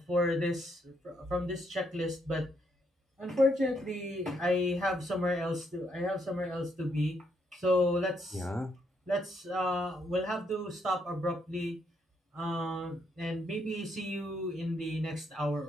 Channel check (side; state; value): both; normal; correlation 0.75